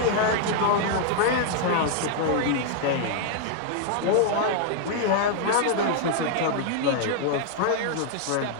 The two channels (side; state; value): both; different; correlation -0.01